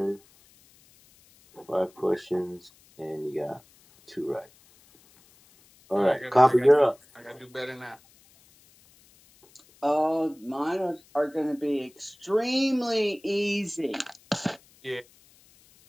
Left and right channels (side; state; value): left; noise; hiss, 29 dB below the sound